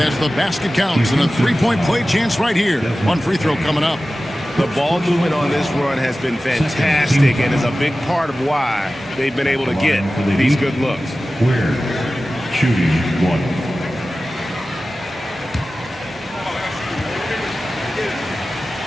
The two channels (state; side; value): normal; both; correlation 0.95